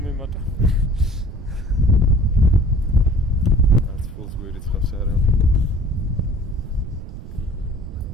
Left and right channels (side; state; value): right; noise; rumble, 10 dB below the sound